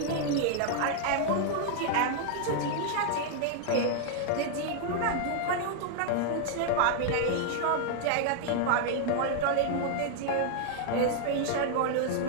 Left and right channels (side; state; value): both; different; correlation 0.00